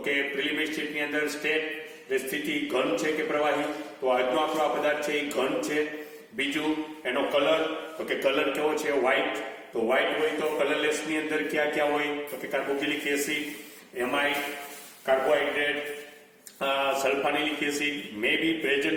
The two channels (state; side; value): identical; both; correlation 1.00